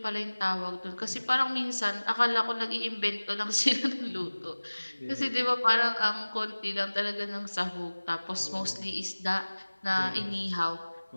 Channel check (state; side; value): inverted; both; correlation -1.00